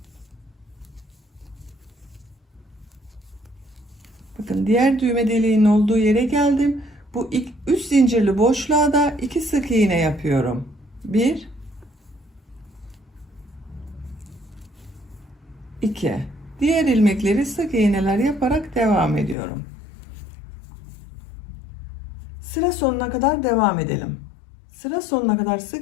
Bakın diğer düğme deliğinin olduğu yere geldim. Bu 3 zincirli boşluğa da 2 sık iğne yapıyorum. 1, 2. Diğer ilmekleri sık iğneler yaparak devam ediyorum. Sıra sonuna kadar devam edelim. Sıra sonuna kadar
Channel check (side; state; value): right; drops out; at 19.4 s